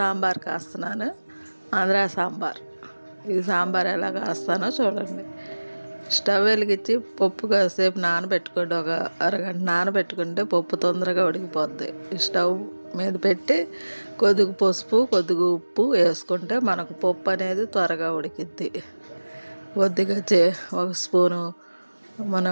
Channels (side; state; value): both; inverted; correlation -1.00